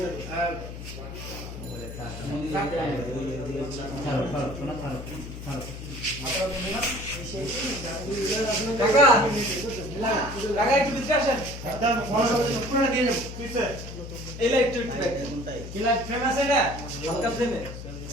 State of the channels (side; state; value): left; noise; hum, 10 dB below the sound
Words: কাকা কাকা একটু ভিতরে আসেন পুরোটা দিয়ে যাবো এই লাইট কি লাইট ফেমাস এটা হালকা ফ্লেমে